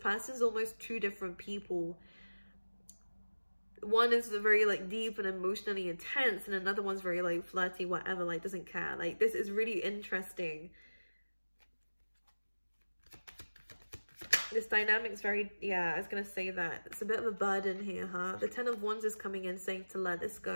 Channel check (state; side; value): inverted; both; correlation -1.00